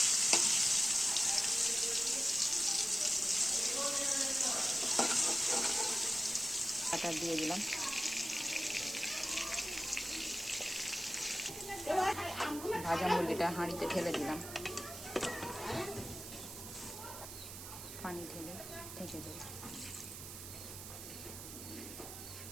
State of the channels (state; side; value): noise; right; hiss, 10 dB below the sound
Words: আটা দিয়ে দিলাম। ভাজা মুরগিটা হাঁড়িতে ঢেলে দিলাম। পানি ঢেলে ঢেকে দেব।